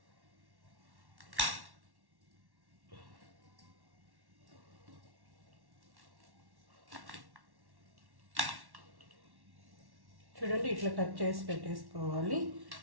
చూడండి, ఇట్లా కట్ చేసి పెట్టేసుకోవాలి.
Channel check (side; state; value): left; late; 1.1 ms